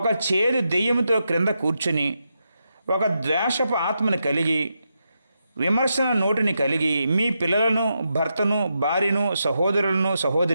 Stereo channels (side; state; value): both; inverted; correlation -0.85